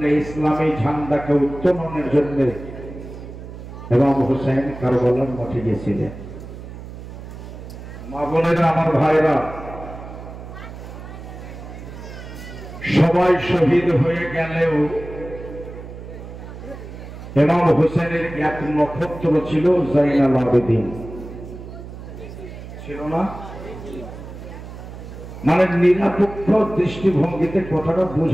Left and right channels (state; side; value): noise; right; hum, 13 dB below the sound